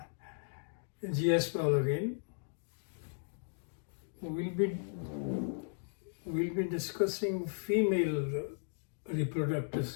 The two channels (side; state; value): right; silent; digital silence